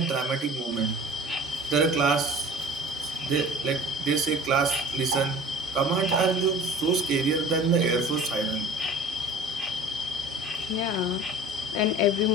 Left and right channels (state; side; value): normal; both; correlation 0.43